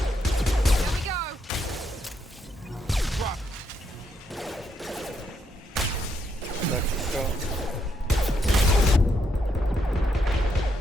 go! Drop. Так, все.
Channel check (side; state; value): both; normal; correlation 0.78